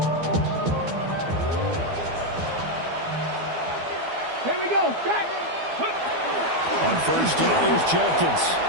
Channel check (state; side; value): late; left; 12 ms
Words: Here we go. On 1st down, here's Jenkins.